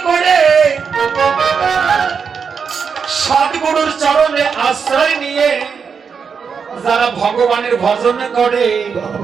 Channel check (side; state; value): left; quieter; 6.1 dB